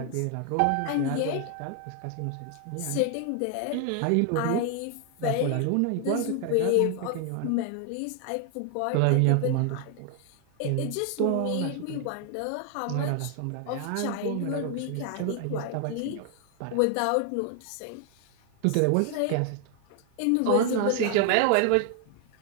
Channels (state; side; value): different; both; correlation 0.00